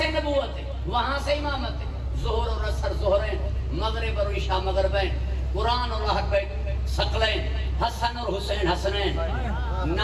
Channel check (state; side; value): identical; both; correlation 1.00